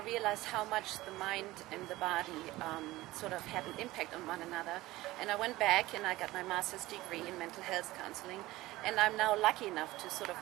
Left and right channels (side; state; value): left; quieter; 18.1 dB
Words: how much the mind and the body sort of had an impact on one another. And I went back and I got my master's degree in mental health counseling. And I'm now lucky enough to sort of